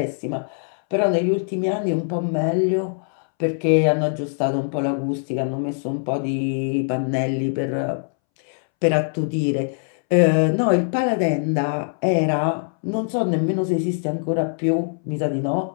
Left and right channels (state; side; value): silent; right; 64 dB below the other